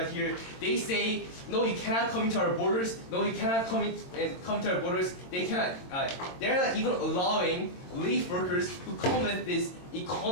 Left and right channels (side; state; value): right; late; 22 ms